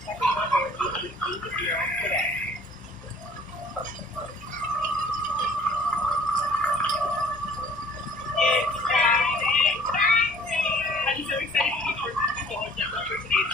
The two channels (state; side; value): normal; both; correlation 0.53